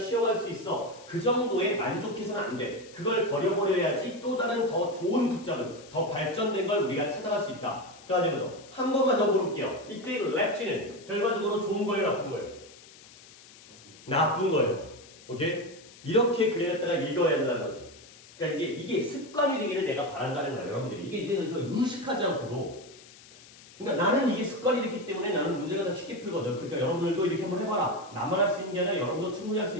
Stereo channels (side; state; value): left; noise; hiss, 21 dB below the sound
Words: 수 있어. 그 정도에 만족해서는 안 돼. 그걸 버려버려야지 또 다른 더 좋은 붙잡은, 더 발전된 걸 우리가 찾아갈 수 있다. 그래가지고 한 번만 더 물어볼게요. 이때 랩지는 결과적으로 좋은 거예요, 나쁜 거예요? 나쁜 거예요. 오케이? 이렇게 그래놨다가 읽어야 한다는 거지. 그러니까 이게 습관이 되기를 내가 바란다는 거예요, 여러분들이. 이게 내가 의식하지 않고도. 그러니까 나는 이게 습관이 됐기 때문에 나는 문제가 더 쉽게 풀거든. 그러니까 여러분들도 이렇게 한번 해봐라. 나만 할 수 있는 게 아니라 여러분도 충분히 할 수